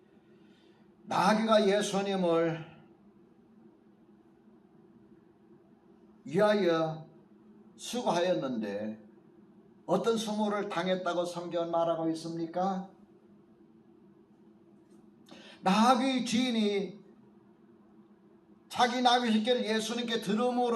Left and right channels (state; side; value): identical; both; correlation 1.00